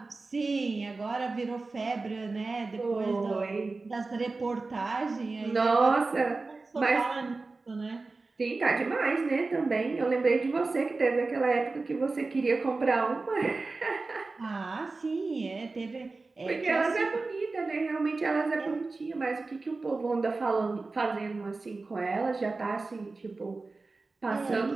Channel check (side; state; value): left; quieter; 3.7 dB